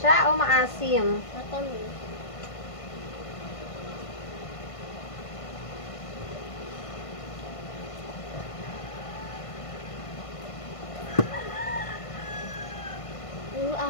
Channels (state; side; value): late; right; 1.5 ms